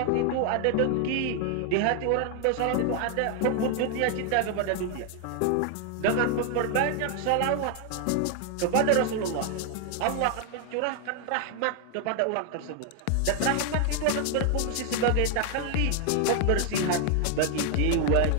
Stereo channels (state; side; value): different; both; correlation 0.00